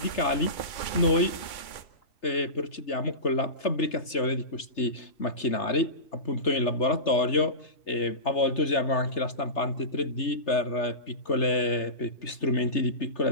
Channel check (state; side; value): late; right; 3.3 ms